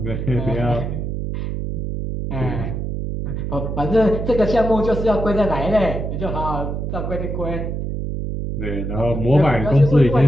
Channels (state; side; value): noise; right; hum, 3 dB below the sound